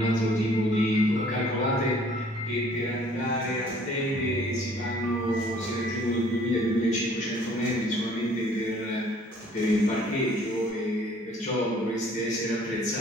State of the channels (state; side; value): normal; both; correlation 0.56